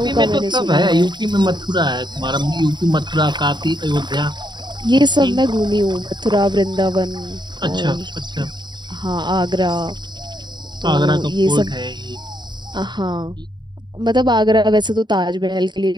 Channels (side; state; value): left; late; 0.21 ms